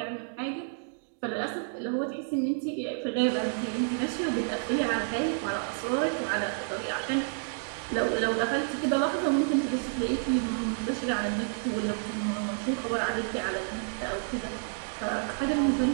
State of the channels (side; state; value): left; silent; digital silence